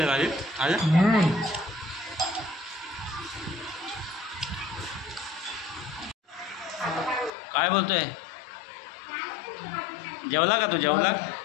भाजी आज। काय बोलतोय, जेवला का तू? जेवला?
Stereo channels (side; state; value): right; drops out; at 7.3 s